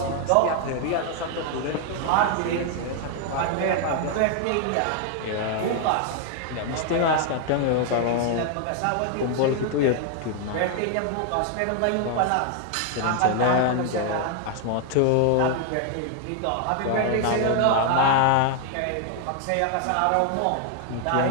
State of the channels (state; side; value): different; both; correlation 0.00